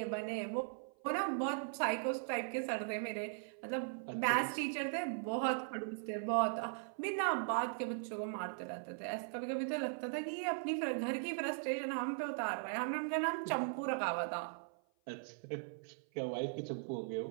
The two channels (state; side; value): silent; left; 52 dB below the other